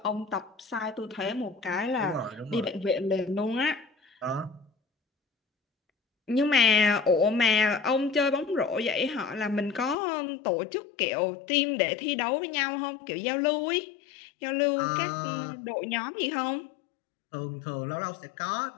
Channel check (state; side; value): drops out; right; at 10.0 s